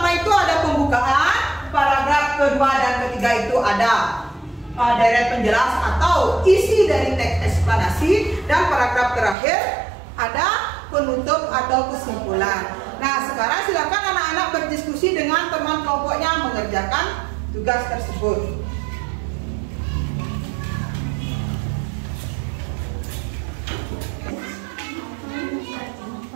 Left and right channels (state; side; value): drops out; left; at 9.3 s